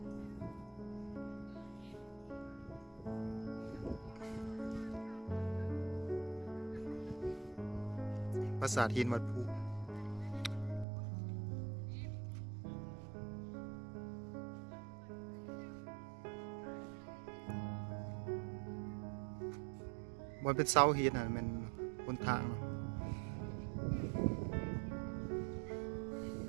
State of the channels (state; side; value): drops out; left; at 10.9 s